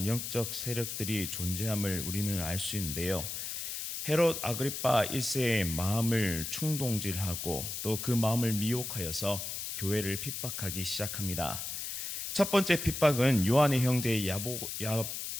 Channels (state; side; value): noise; left; hiss, 5 dB below the sound